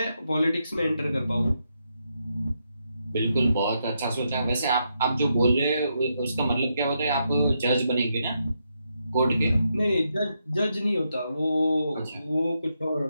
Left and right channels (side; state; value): both; inverted; correlation -0.81